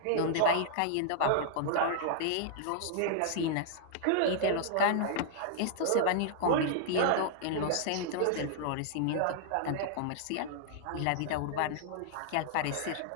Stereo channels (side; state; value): both; different; correlation -0.01